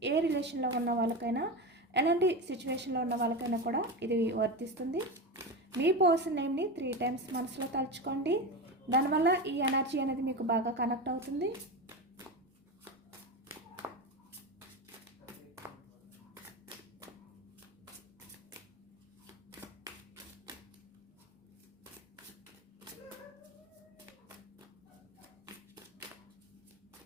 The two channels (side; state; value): both; normal; correlation 0.21